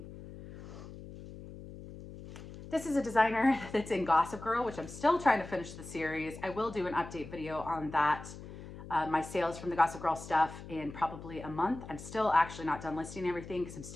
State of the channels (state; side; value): noise; left; hum, 13 dB below the sound